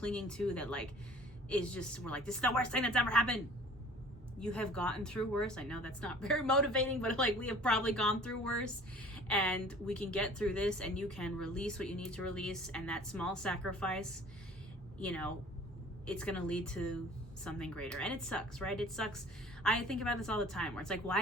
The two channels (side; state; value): both; normal; correlation 0.48